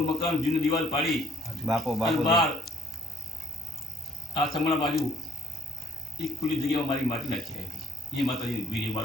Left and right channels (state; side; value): normal; both; correlation 0.64